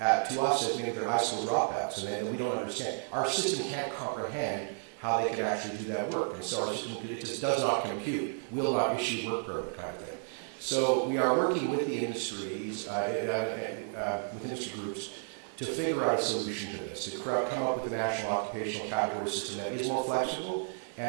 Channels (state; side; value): silent; left; 56 dB below the other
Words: to us as maybe they're high school dropouts, and that we don't understand. Our system can't comprehend how they can actually do that work. And so our system, it just does not compute, will not issue work permit kind of thing. So we are working with the industries, with industry groups, to figure out a solution to this, to come up with a national occupational category system that is more flexible